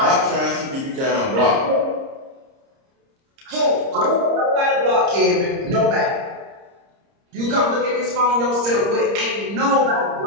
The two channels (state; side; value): late; left; 30 ms